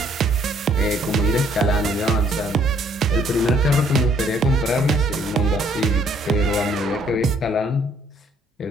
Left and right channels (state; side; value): normal; both; correlation 0.64